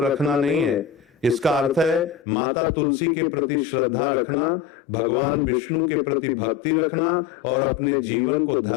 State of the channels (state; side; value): drops out; right; at 2.2 s